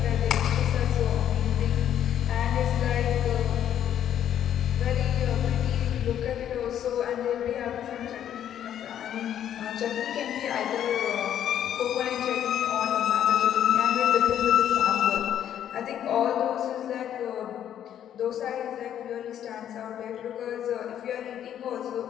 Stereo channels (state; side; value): quieter; right; 10.3 dB